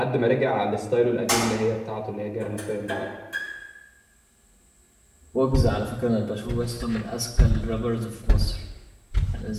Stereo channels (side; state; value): both; identical; correlation 1.00